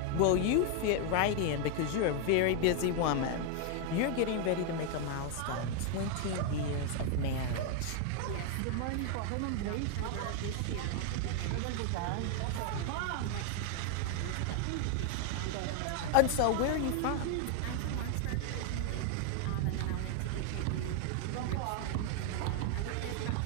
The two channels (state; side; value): different; both; correlation 0.00